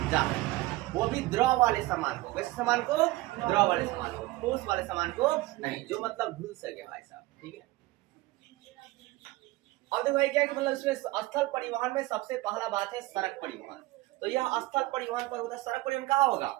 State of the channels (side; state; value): left; quieter; 19.5 dB